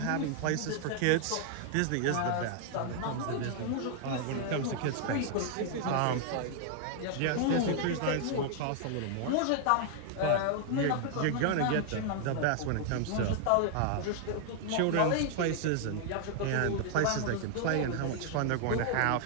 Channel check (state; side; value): different; both; correlation 0.00